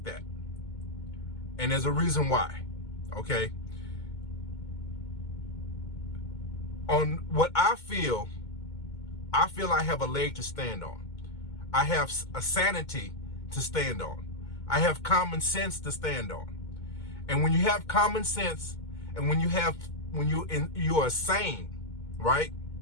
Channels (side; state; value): right; late; 2.2 ms